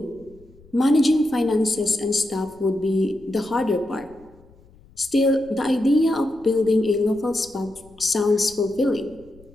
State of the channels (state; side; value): noise; left; rumble, 26 dB below the sound